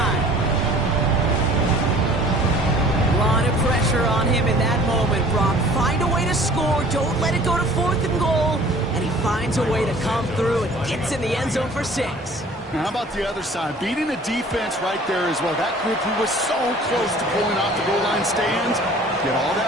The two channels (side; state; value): both; normal; correlation 0.50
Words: A lot of pressure on him in that moment, Brock. Find a way to score. Don't let it go to 4th and goal. And he finds a way to come through and gets in the end zone for 6. Now, how about the other side? Beating the defense right there as well. That group who was so close to pulling off the goal line stand, yet all